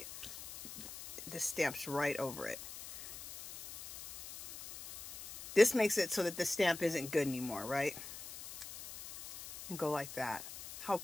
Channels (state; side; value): noise; left; hiss, 12 dB below the sound